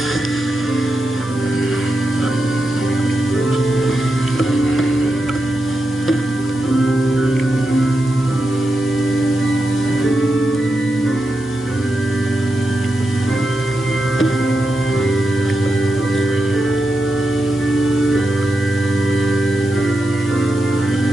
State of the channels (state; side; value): normal; both; correlation 0.88